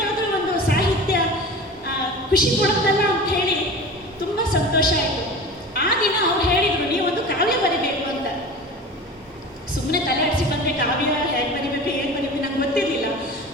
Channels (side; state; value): both; normal; correlation 0.35